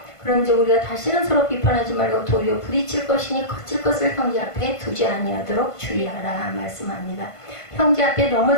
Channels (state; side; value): late; right; 1.5 ms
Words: 그럼 이제 우리가 다시는 서로 비판하지 말고 도리어 부딪힐 것이니 거칠 것을 형제 앞에 두지 아니하도록 주의하라 말씀합니다. 형제 앞에